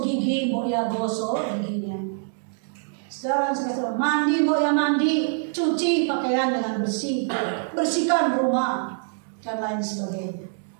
gigi, mbok ya gosok giginya. Saudara saya kasih mandi, mbok ya mandi. Cuci pakaian dengan bersih. Bersihkan rumah dan lain sebagainya.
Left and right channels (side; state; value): left; silent; 62 dB below the other